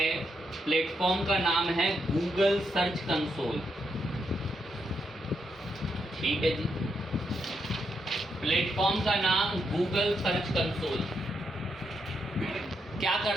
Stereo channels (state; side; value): normal; both; correlation 0.81